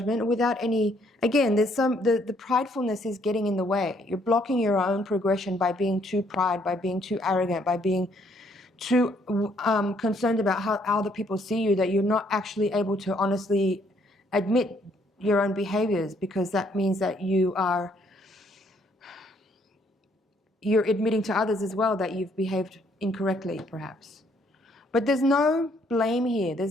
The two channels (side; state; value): both; normal; correlation 0.67